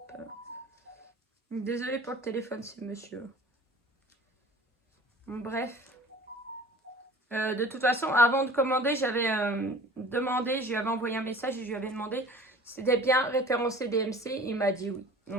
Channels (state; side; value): normal; both; correlation 0.44